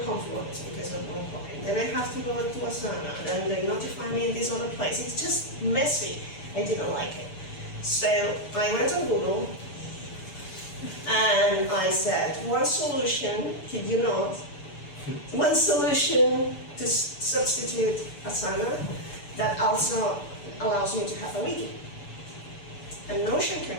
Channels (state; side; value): late; right; 7.0 ms